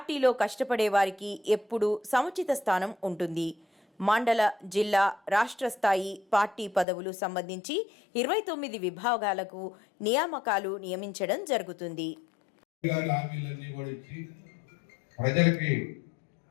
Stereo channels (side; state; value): right; drops out; at 6.9 s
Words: కష్టపడే వారికి ఎప్పుడూ సముచిత స్థానం ఉంటుంది. మండల, జిల్లా, రాష్ట్ర స్థాయి పార్టీ పదవులు సంబంధించి 29 విభాగాలకు నియామకాలు నియమించడం జరుగుతుంది. ప్రజలకి